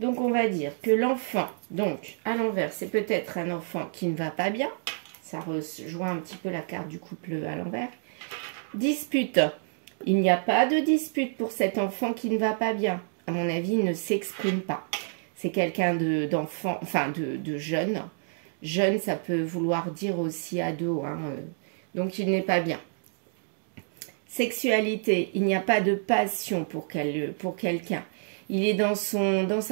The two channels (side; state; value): left; silent; digital silence